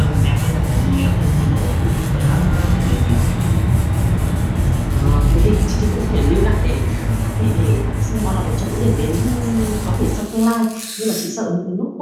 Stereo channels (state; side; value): identical; both; correlation 1.00